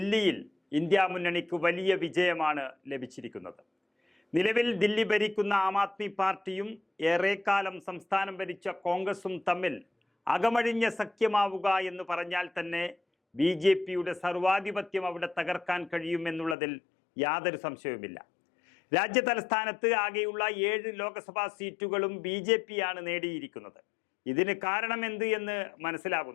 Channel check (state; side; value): drops out; right; at 16.6 s